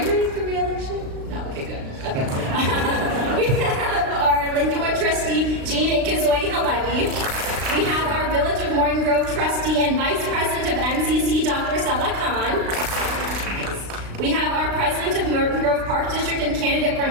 running for re-election? No, okay, good. Okay. We have our Lincolnwood trustee, Jean Ikazoy Halevi. We have our Village of Morton Grove trustee and vice president of MCC, Dr. Saba Khan. We have our president of Morton Grove Park District and candidate for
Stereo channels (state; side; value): late; left; 36 ms